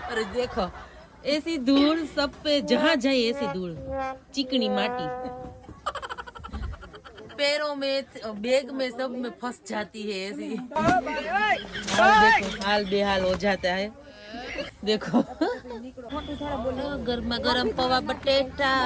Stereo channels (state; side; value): identical; both; correlation 1.00